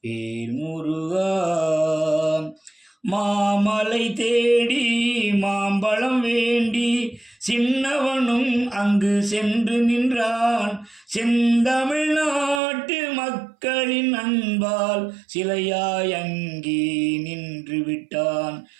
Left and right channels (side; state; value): left; drops out; at 12.6 s